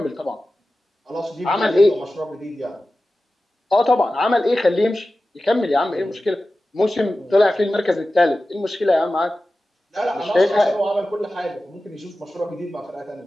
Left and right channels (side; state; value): both; normal; correlation 0.95